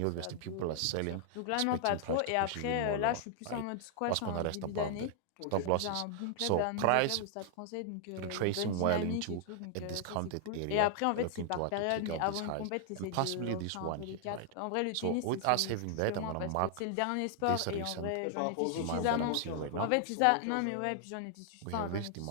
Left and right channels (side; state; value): both; different; correlation 0.00